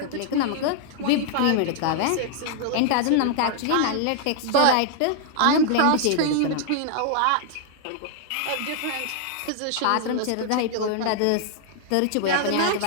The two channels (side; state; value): both; different; correlation 0.00